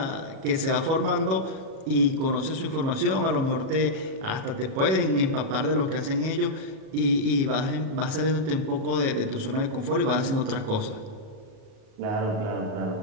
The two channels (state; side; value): late; left; 37 ms